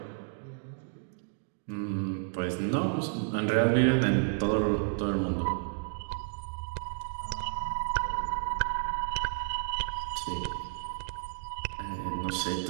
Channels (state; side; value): silent; left; digital silence